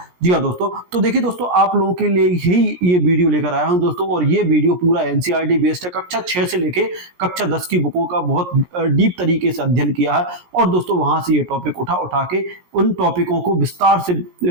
जी हाँ दोस्तों, तो देखिए दोस्तों आप लोगों के लिए ही ये वीडियो लेकर आया हूं दोस्तों, और ये वीडियो पूरा एनसीईआरटी बेस्ड है। कक्षा 6 से लेके कक्षा 10 की बुकों का बहुत डीप तरीके से अध्ययन किया है, और दोस्तों वहां से ये टॉपिक उठा के उन टॉपिकों को विस्तार से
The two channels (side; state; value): left; late; 17 ms